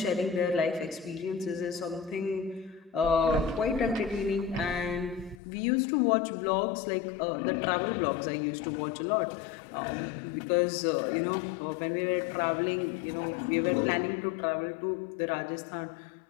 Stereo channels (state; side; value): drops out; right; at 5.4 s